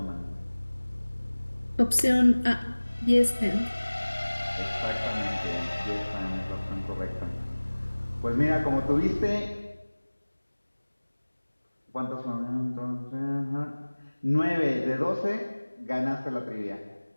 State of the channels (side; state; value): both; inverted; correlation -1.00